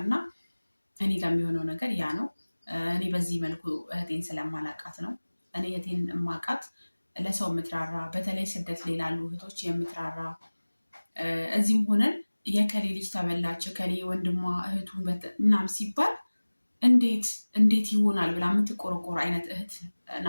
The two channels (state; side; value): inverted; both; correlation -1.00